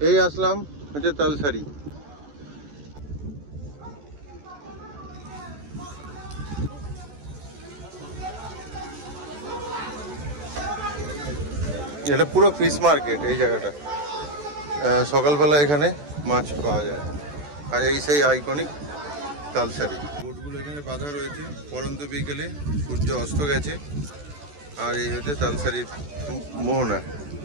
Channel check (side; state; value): left; late; 14 ms